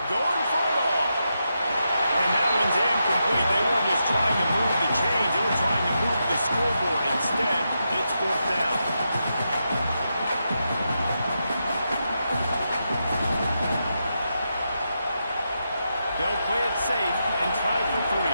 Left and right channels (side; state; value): both; inverted; correlation -0.85